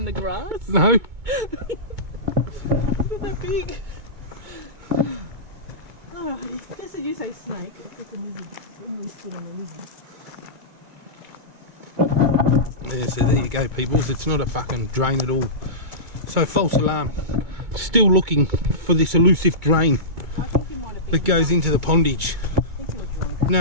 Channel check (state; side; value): late; left; 2.2 ms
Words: the grass? No. Look at that big. Alrighty. Just as you say snake, I think a lizard. When we stood on a lizard. Yeah, so there you go, peoples. It's not a fucking drain at all. So false alarm. Still looking for this elusive drain I think you might have been. that goes into the pondage. I think you were drunk.